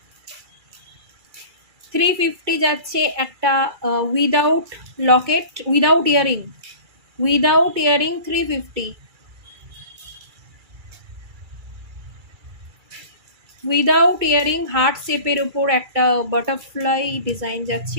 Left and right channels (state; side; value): late; left; 2.3 ms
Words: 350 যাচ্ছে একটা without Locket, without earring, without earring 350। Without earring heart শেপের উপর একটা বাটারফ্লাই ডিজাইন